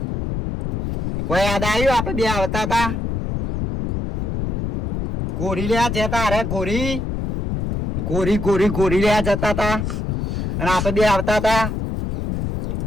કોઈ યાદ આવ્યું આપણે બે આવતા હતા ગોરી લેવા જતા અરે ગોરી લેવા જતા હતા અને આપણે બે આવતા હતા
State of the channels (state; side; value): noise; left; rumble, 3 dB below the sound